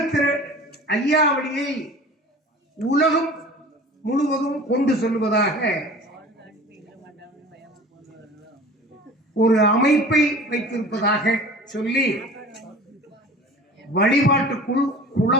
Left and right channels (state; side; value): normal; both; correlation 0.41